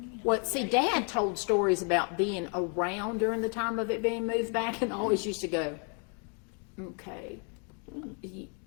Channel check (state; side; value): quieter; right; 39.0 dB